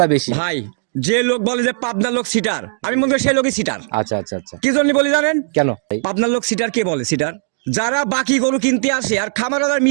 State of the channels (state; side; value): silent; left; digital silence